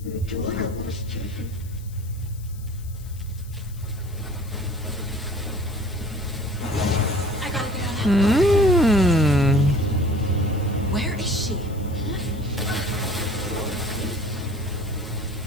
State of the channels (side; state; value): left; noise; hiss, 22 dB below the sound